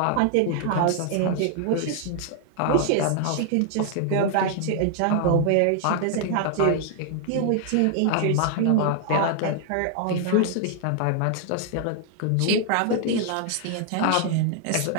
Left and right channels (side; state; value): both; different; correlation 0.00